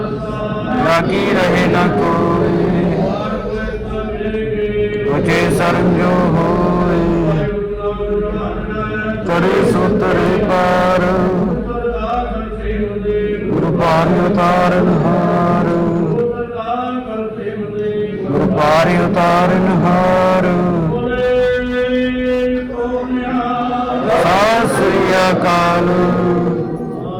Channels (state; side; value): identical; both; correlation 1.00